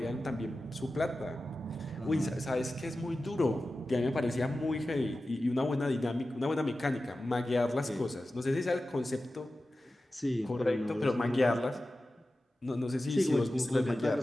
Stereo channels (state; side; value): normal; both; correlation 0.94